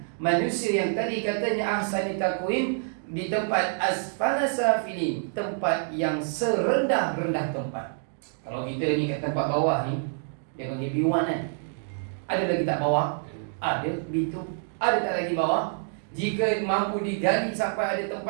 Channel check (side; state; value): left; silent; digital silence